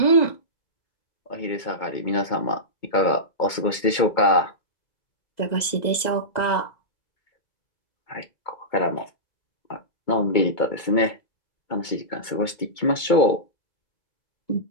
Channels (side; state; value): right; late; 2.2 ms